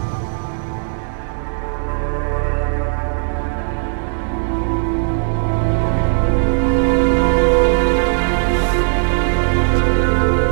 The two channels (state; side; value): silent; left; 68 dB below the other